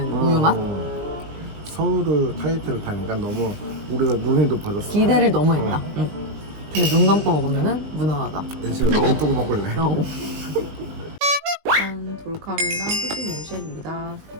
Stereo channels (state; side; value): late; left; 20 ms